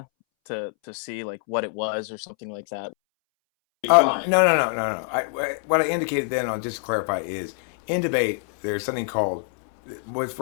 to see like what it was or something like that. No. What I indicated then, I'll just clarify, is in debate there's something called, what's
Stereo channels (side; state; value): right; silent; 62 dB below the other